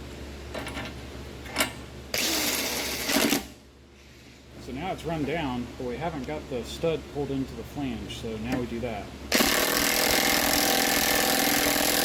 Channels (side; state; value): both; identical; correlation 1.00